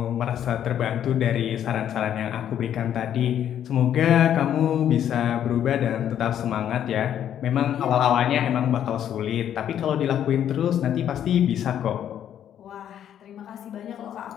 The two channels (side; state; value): right; quieter; 10.1 dB